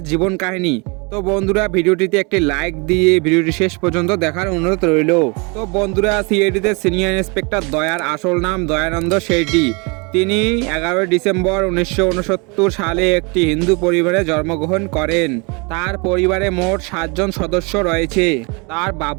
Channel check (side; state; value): left; quieter; 30.6 dB